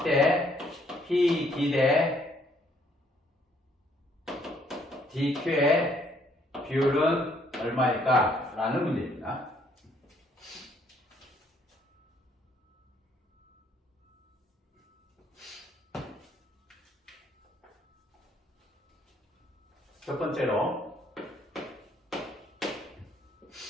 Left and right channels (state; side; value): normal; both; correlation 0.66